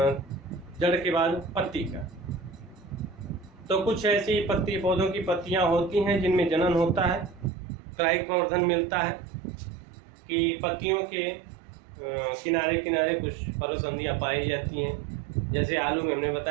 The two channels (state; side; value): drops out; left; at 7.5 s